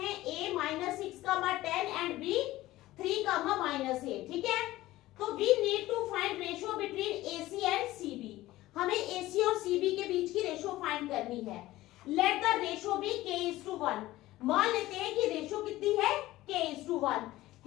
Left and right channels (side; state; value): right; quieter; 16.8 dB